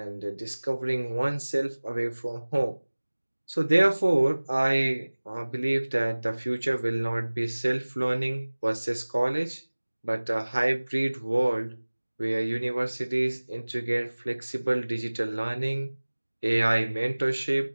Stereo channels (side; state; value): both; inverted; correlation -1.00